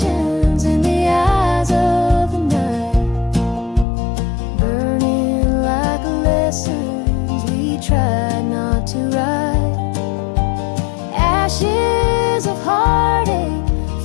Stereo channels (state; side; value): drops out; right; at 3.9 s